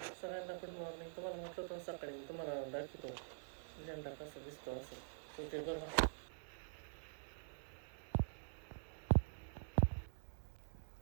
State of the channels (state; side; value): silent; left; digital silence